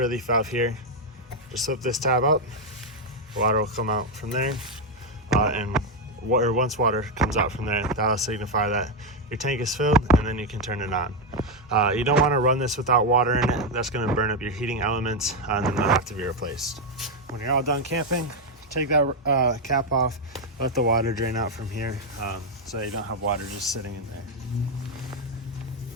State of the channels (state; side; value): normal; both; correlation 0.04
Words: relief valve here. Just slip this tab up. Water will come out from there. Once water comes out from there, that'll signify that your tank is filled, and then you can turn it on. You don't want to run this without water in it. That's going to burn up your heating elements, and then they'll have to be replaced. When you're all done camping, take that cap off, let the water drain out from here, so you don't have water just sitting in there.